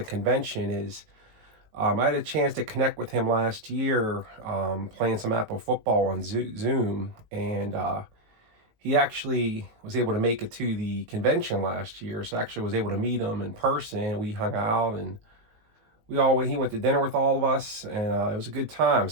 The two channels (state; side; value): late; left; 18 ms